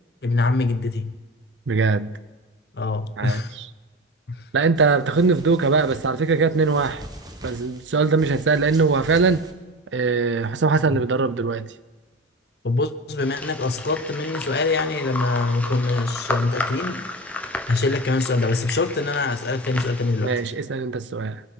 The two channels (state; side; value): normal; both; correlation 0.29